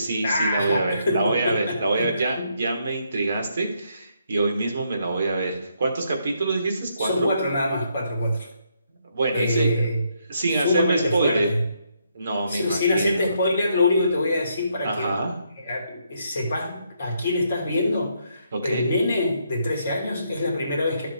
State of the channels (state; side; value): inverted; both; correlation -0.75